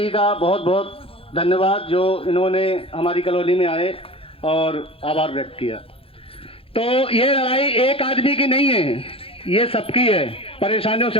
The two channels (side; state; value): right; late; 0.27 ms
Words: का बहुत बहुत धन्यवाद जो इन्होंने हमारी कॉलोनी में आए और आभार व्यक्त किया। तो ये लड़ाई एक आदमी की नहीं है, ये सबकी है, परेशानियों